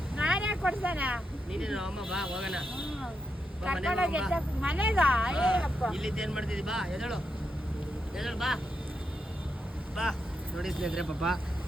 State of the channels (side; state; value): both; normal; correlation 0.84